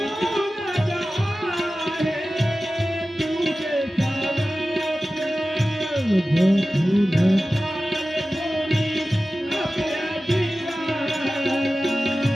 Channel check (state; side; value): normal; both; correlation 0.95